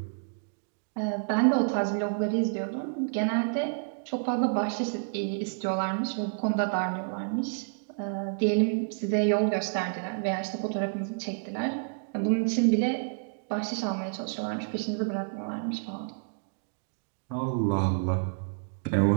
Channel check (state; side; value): silent; left; digital silence